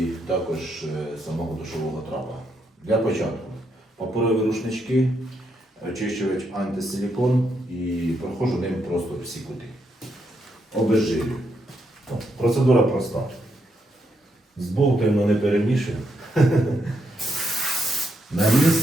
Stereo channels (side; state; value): both; normal; correlation 0.79